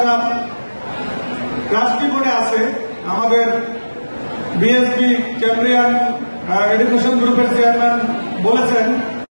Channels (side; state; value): both; inverted; correlation -1.00